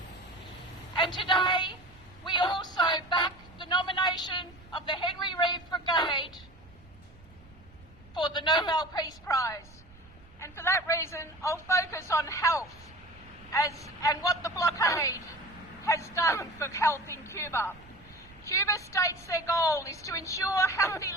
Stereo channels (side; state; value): right; noise; rumble, 24 dB below the sound